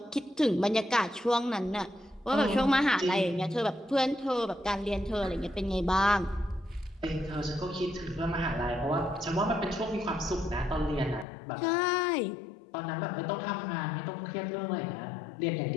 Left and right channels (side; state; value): right; drops out; at 11.2 s